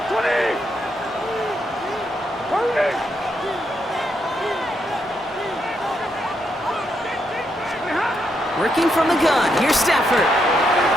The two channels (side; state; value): both; normal; correlation 0.79